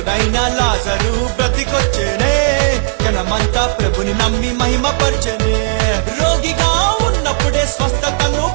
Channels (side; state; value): left; silent; digital silence